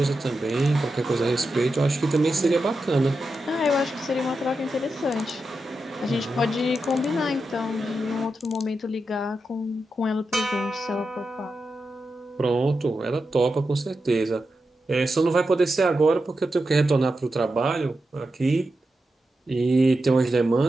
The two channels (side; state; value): both; normal; correlation 0.89